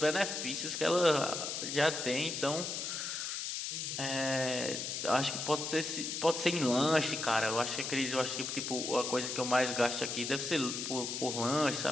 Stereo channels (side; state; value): left; noise; hiss, 4 dB below the sound